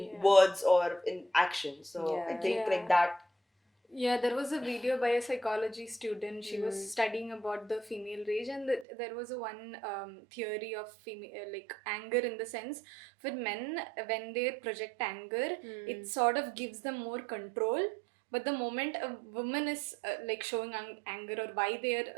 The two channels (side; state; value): left; drops out; at 8.8 s